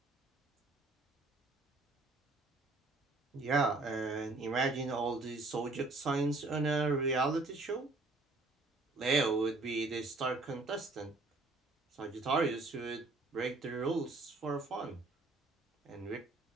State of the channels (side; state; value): left; quieter; 3.3 dB